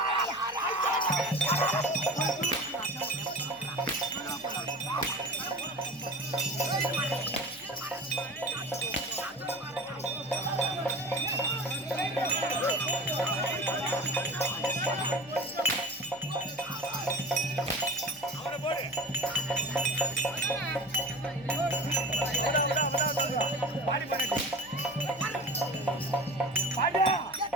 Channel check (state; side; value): noise; left; hum, 28 dB below the sound